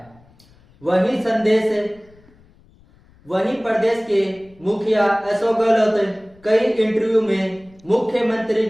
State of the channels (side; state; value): left; noise; rumble, 29 dB below the sound